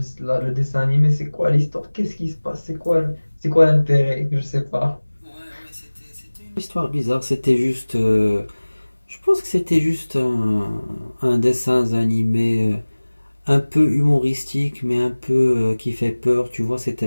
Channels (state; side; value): inverted; both; correlation -1.00